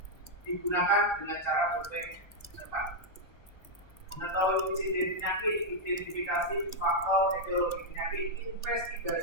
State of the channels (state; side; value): late; right; 1.1 ms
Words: digunakan dengan cara survei cepat. Mengetahui insiden penyakit, identifikasi faktor etiologi penyakit,